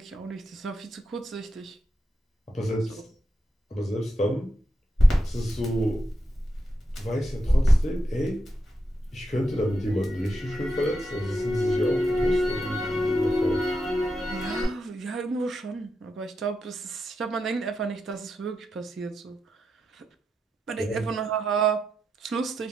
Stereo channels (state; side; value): normal; both; correlation 0.86